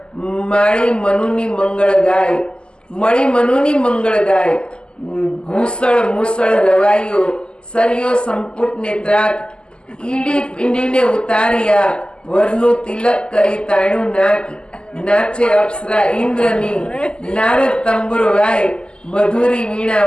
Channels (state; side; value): late; right; 0.049 ms